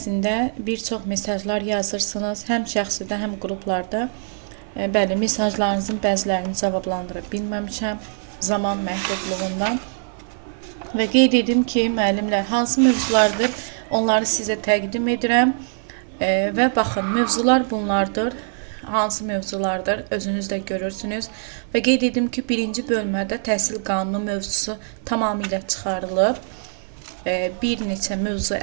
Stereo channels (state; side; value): silent; left; 56 dB below the other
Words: bir çox mesajlar yazırsınız, həm şəxsidə, həm qruplarda. Bəli, mesajlarınızın bəzilərini cavablandıra bilməmişəm zaman məhdudluğundan. Və qeyd edim ki, müəllimlər, hansı mövzulardır, onları sizə təqdim edirəm. Və baxın, mövzular bunlardır. Hansı mövzulardır, özünüz də görürsünüz. Və qeyd edim ki, birinci bölmədə təhsil qanunu mövzusu tamamilə çıxarılıb. Bir neçə mövzu